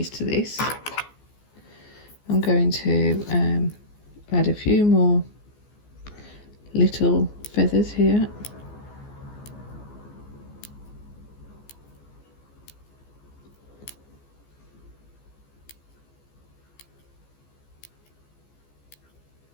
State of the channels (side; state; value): right; late; 14 ms